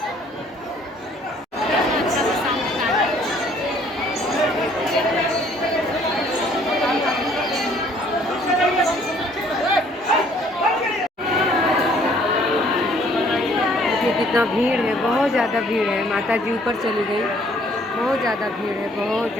जिसको कितना भीड़ है, बहुत ज़्यादा भीड़ है। माता जी ऊपर चली गई, बहुत ज़्यादा भीड़ है, बहुत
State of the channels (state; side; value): normal; both; correlation 0.60